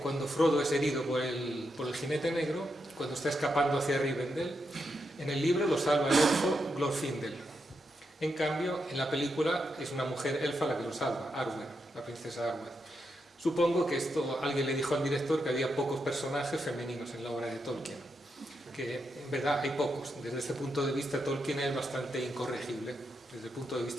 Frodo es herido por el jinete negro, cuando está escapando hacia Rivendell, en el libro lo salva el elfo Glorfindel. En cambio, en la película es una mujer elfa la que lo salva, Arwen, la princesa Arwen. Supongo que alguien le dijo al director que había pocos personajes femeninos en la obra de Tolkien, que en verdad hay pocos. Desde ese punto de vista Tolkien es bastante incorregible, desde el punto de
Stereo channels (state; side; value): normal; both; correlation 0.84